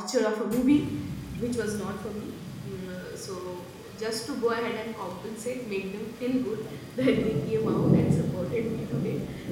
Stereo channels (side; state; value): both; identical; correlation 1.00